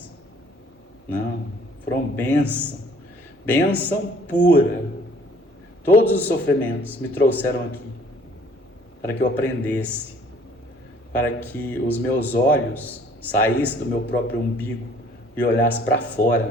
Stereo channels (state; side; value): normal; both; correlation 0.57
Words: Não, foram bênção. Bênção pura. Todos os sofrimentos me trouxeram aqui para que eu aprendesse, para que os meus olhos saíssem do meu próprio umbigo e olhassem para